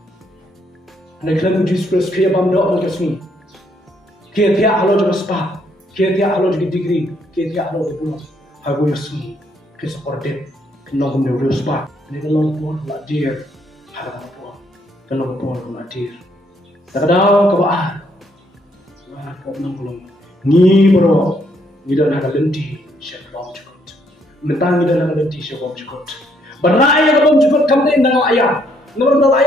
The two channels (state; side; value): normal; both; correlation 0.71